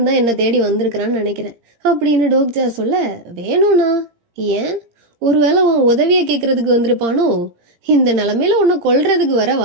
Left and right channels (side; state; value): left; late; 17 ms